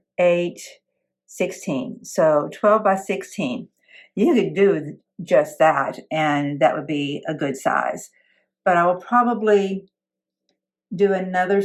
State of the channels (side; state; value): both; identical; correlation 1.00